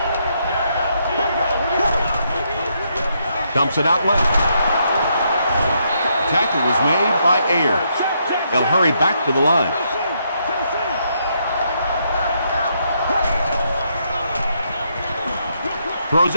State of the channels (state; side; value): inverted; both; correlation -0.76